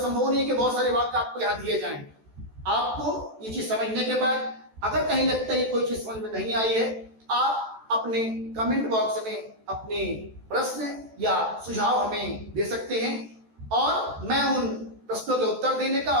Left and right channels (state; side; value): late; left; 14 ms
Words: नहीं है कि बहुत सारे वाक्य आपको यहाँ दिए जाएं, आपको ये चीज समझने के बाद अगर कहीं लगता है कोई चीज समझ में नहीं आई है, आप अपने कमेंट बॉक्स में अपने प्रश्न या सुझाव हमें दे सकते हैं और मैं उन प्रश्नों के उत्तर देने का